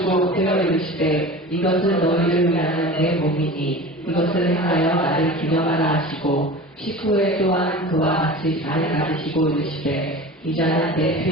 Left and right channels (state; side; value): normal; both; correlation 0.35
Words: 되어 이르시되 이것은 너희를 위하는 내 몸이니 이것을 행하여 나를 기념하라 하시고 식후에 또한 그와 같이 잔을 가지시고 이르시되 이 잔은 내